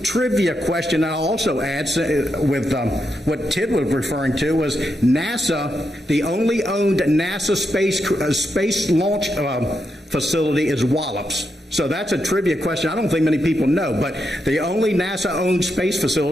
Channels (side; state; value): both; normal; correlation 0.84